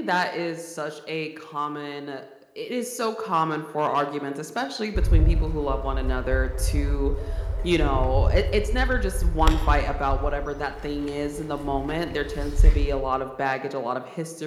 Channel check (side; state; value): both; identical; correlation 1.00